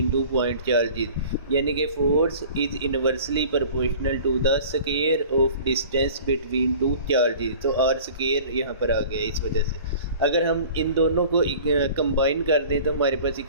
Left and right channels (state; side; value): inverted; both; correlation -0.45